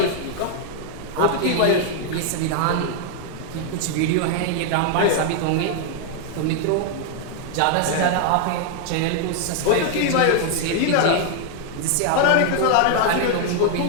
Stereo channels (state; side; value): different; both; correlation 0.00